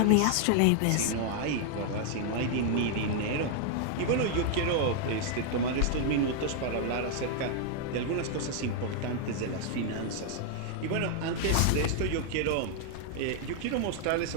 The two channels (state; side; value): different; both; correlation 0.00